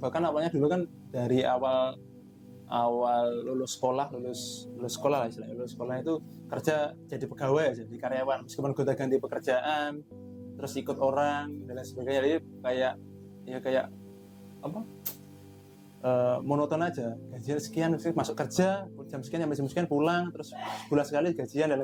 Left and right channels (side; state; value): both; identical; correlation 1.00